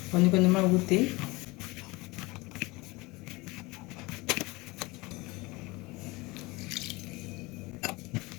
கொஞ்சம் கொஞ்சமாக ஊற்றி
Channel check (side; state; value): right; quieter; 23.2 dB